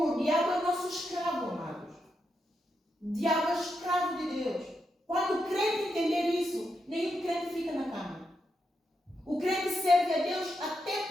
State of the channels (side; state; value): both; normal; correlation 0.84